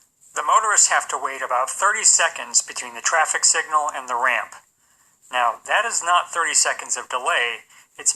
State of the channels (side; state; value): both; identical; correlation 1.00